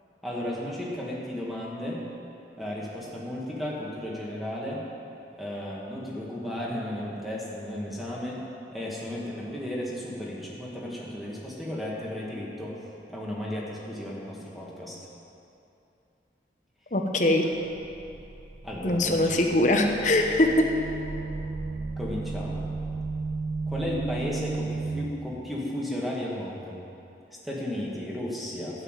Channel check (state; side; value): normal; both; correlation 0.59